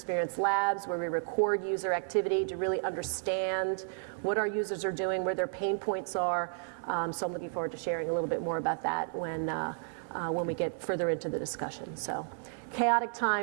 labs where we record user activity to really understand what our users are doing, where their pain points are. So I'm looking forward to sharing a little bit more about that when we get further into the discussion. So chaotic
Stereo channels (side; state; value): left; silent; 56 dB below the other